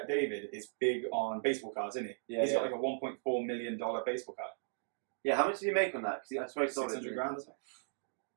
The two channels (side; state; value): left; silent; digital silence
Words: is big on baseball cards, isn't he? Yeah, He's got like a $1.4 million baseball card. Yeah, how much did he make on that? Because that's very solid. 600 grand, isn't it?